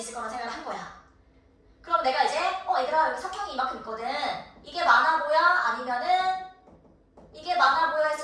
거라는 생각을 한 거야. 그럼 내가 이제 얘들아 여기 사평이 이만큼 있거든. 이게 많아 보여? 아니면은 이게 많아 보여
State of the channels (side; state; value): both; identical; correlation 1.00